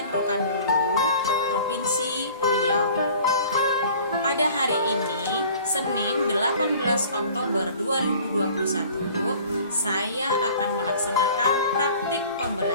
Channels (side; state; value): both; inverted; correlation -0.48